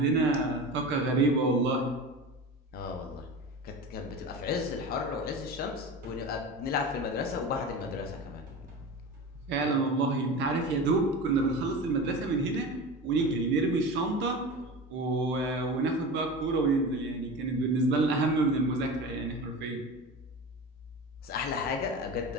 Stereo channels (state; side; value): normal; both; correlation 0.30